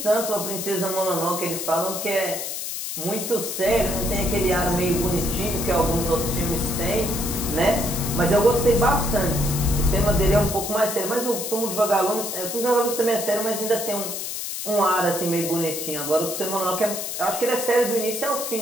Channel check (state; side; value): noise; left; hiss, 5 dB below the sound